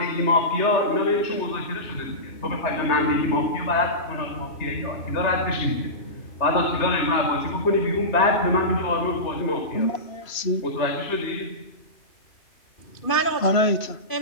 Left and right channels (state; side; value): late; right; 3.0 ms